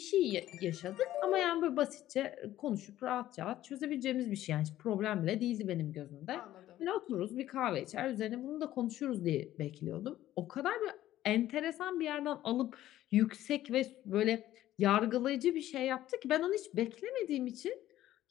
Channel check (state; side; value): quieter; right; 13.7 dB